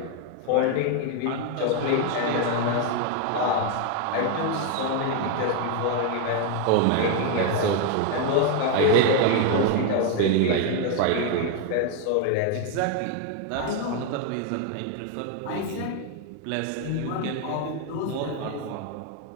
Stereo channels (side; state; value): both; different; correlation 0.01